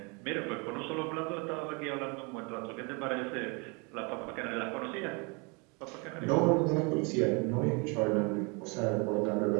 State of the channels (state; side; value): quieter; left; 31.0 dB